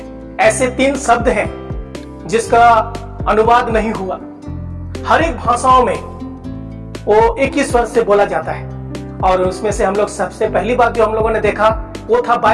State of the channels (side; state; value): both; identical; correlation 1.00